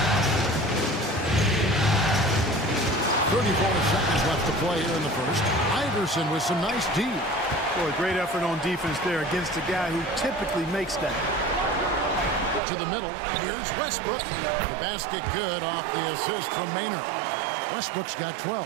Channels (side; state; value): left; drops out; at 12.6 s